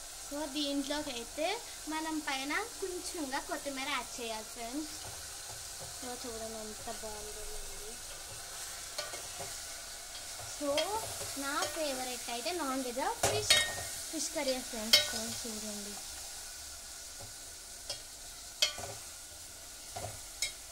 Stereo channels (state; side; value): identical; both; correlation 1.00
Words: సో దీంట్లోకి అయితే మనం పైన కొంచెంగా కొత్తిమీర యాడ్ చేయాలి ఫ్రెండ్స్. సో చూడండి ఎంత బాగుంటుందండి. సో నా ఫేవరెట్ అయితే non veg fish curry friends. చూడండి.